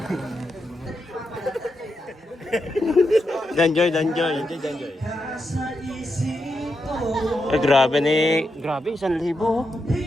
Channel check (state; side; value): normal; both; correlation 0.85